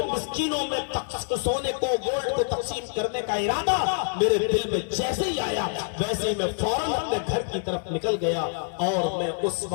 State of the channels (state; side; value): silent; right; digital silence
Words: मिस्कीनों में सोने को, गोल्ड को तकसीम करने का इरादा मेरे दिल में जैसे ही आया, वैसे ही मैं फौरन अपने घर की तरफ निकल गया और मैं उस